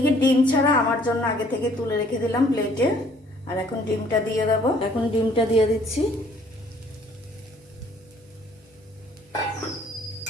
ডিম ছাড়া আমার জন্য আগে থেকে তুলে রেখে দিলাম প্লেটে। আর এখন ডিমটা দিয়ে দেব, এখন ডিমটা দিয়ে দিচ্ছি।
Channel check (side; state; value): both; normal; correlation 0.60